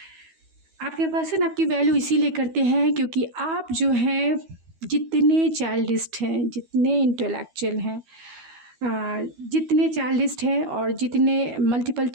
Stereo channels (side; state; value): left; late; 12 ms